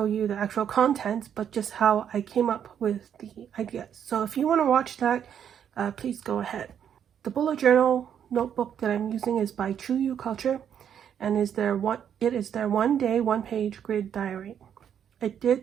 you the actual contents, but just how I came up with the ideas. So if you want to watch that, please go ahead. The bullet journal notebook that I'm using is by True You Culture, and it is their 1 day, 1 page grid diary. I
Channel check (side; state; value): left; quieter; 8.8 dB